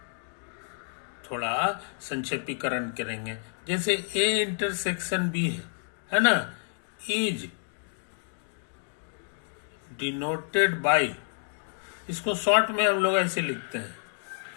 करेंगे। जैसे ए इंटरसेक्शन बी है ना, इज डिनोटेड बाय, इसको शॉर्ट में हम लोग ऐसे लिखते हैं,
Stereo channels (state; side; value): silent; right; digital silence